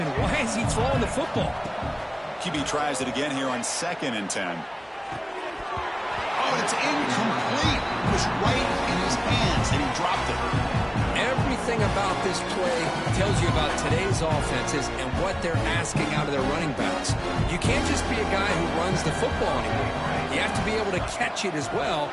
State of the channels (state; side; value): identical; both; correlation 1.00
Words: and why is he throwing the football? QB tries it again here on 2nd and 10. Oh, it's incomplete. It was right in his hands and he dropped it. Everything about this play tells you about today's offenses and what they're asking out of their running backs. You can't just be a guy who runs the football anymore. You have to be able to catch it as well,